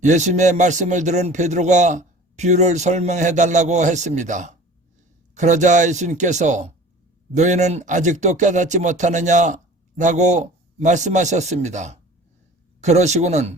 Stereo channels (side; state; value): both; normal; correlation 0.43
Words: 예수님의 말씀을 들은 베드로가 비유를 설명해 달라고 했습니다. 그러자 예수님께서 너희는 아직도 깨닫지 못하느냐 라고 말씀하셨습니다.